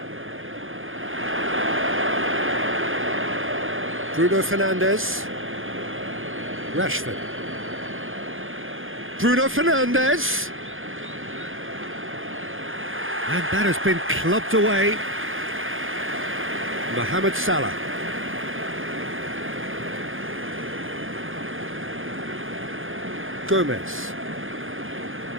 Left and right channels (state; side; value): late; left; 0.59 ms